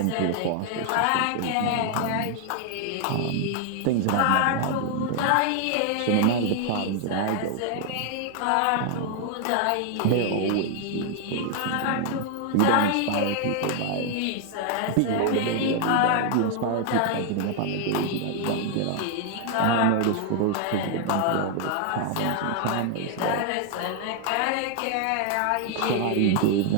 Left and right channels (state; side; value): different; both; correlation 0.00